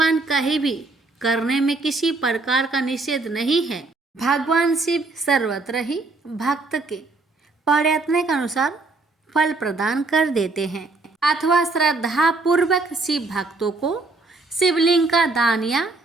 कहीं भी करने में किसी प्रकार का निषेध नहीं है। भगवान शिव सर्वत्र ही भक्त के प्रयत्न के अनुसार फल प्रदान कर देते हैं अथवा श्रद्धा पूर्वक शिव भक्तों को शिवलिंग का दान या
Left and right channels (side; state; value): left; quieter; 3.5 dB